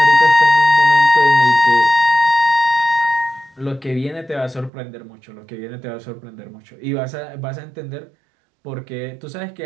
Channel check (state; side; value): drops out; left; at 4.7 s